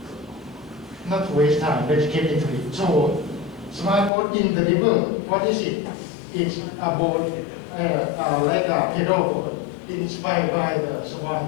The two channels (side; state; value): right; drops out; at 4.1 s